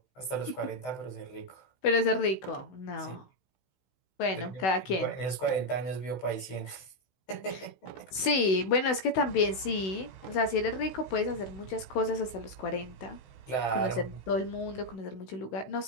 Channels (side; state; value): right; late; 16 ms